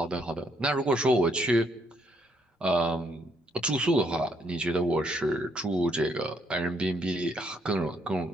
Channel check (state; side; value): normal; both; correlation 0.72